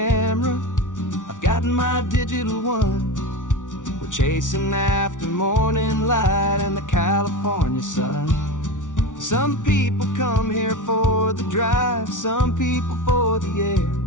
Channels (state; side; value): late; right; 0.87 ms